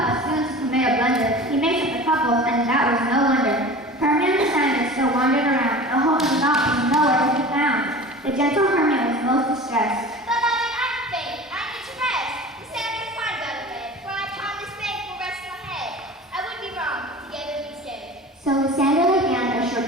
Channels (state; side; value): normal; both; correlation 0.37